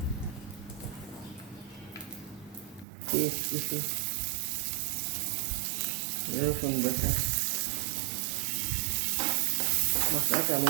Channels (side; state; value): left; drops out; at 2.9 s